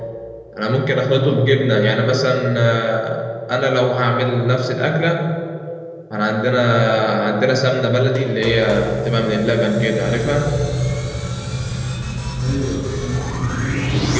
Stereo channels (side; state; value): both; identical; correlation 1.00